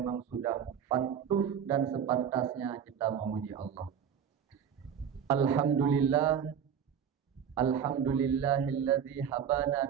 sudah patut dan sepantasnya kita memuji Allah. Alhamdulillah, alhamdulillahilladzi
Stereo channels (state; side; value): quieter; left; 8.1 dB